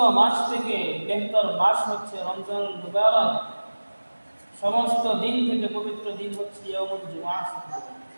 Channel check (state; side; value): inverted; both; correlation -1.00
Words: মাস থেকে বেহতর মাস হচ্ছে রমজানুল মুবারক সমস্ত দিন থেকে পবিত্র দিন হচ্ছে ইয়াউমুল জুমআহ